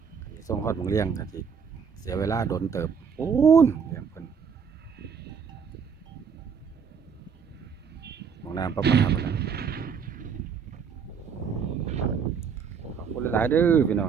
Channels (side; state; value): left; quieter; 6.5 dB